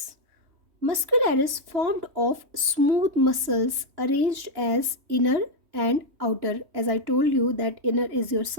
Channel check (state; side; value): late; left; 3.1 ms